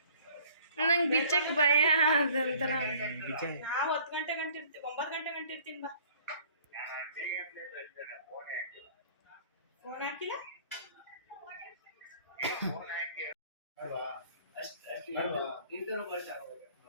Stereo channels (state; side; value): inverted; both; correlation -0.53